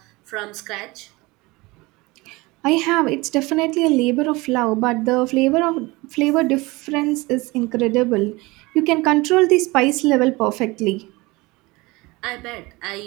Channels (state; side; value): quieter; left; 22.9 dB